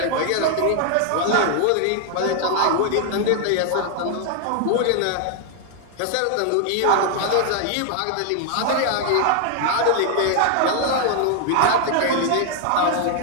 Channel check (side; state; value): both; different; correlation 0.00